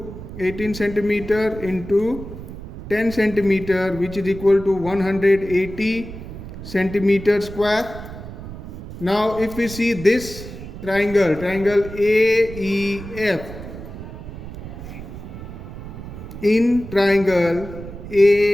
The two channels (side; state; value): right; noise; rumble, 12 dB below the sound